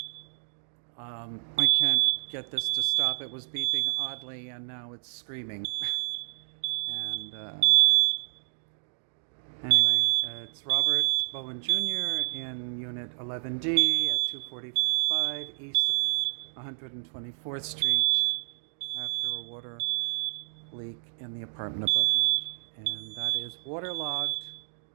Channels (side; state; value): left; silent; digital silence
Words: I can't get this to stop. It was beeping oddly and now it's screaming. And anyway, it's Robert Bowen Jr. in Unit 11D at 245 East 124th Street after a water leak in the apartment above me. And that is waterlogged.